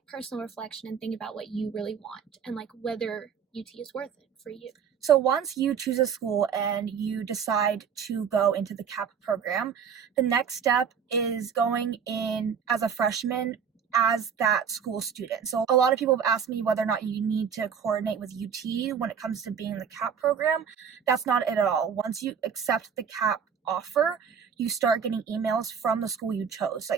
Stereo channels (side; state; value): left; quieter; 7.2 dB